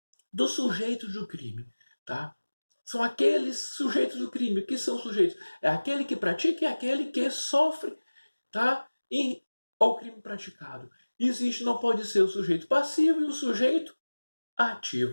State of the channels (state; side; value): inverted; both; correlation -1.00